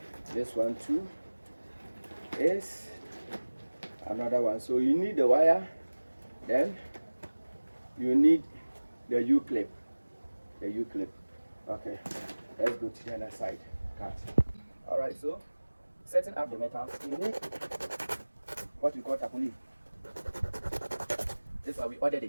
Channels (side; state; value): both; inverted; correlation -1.00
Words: this one too is another one. So you need the wire, then you need the U-clip. The U-clip. Okay, let's go to the other side. Cut. All right. So setting up the metal, you need what we call tapoli. This is why we ordered